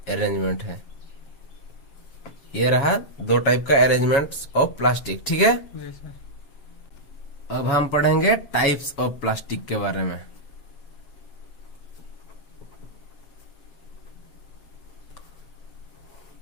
अरेंजमेंट है। ये रहा 2 टाइप का अरेंजमेंट ऑफ प्लास्टिक, ठीक है। जी सर। अब हम पढ़ेंगे टाइप्स ऑफ प्लास्टिक के बारे में।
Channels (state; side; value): late; right; 7.1 ms